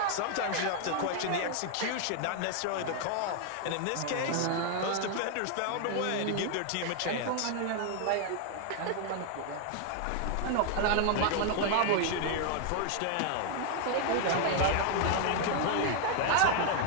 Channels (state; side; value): different; both; correlation 0.00